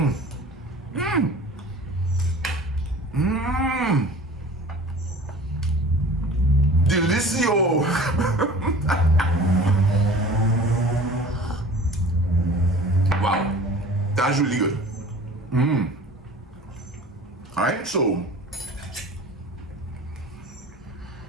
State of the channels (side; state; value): both; normal; correlation 0.43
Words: Delicio. Wow, that's really good. All right, so